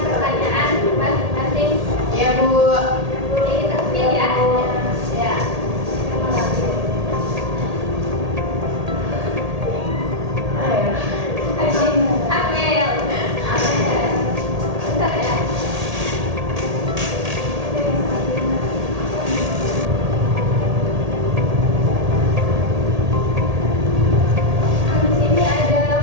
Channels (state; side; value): late; left; 1.8 ms